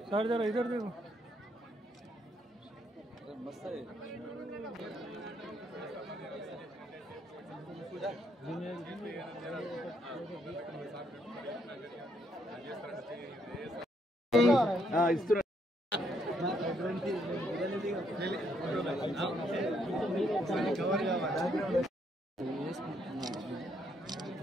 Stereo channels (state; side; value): normal; both; correlation 0.73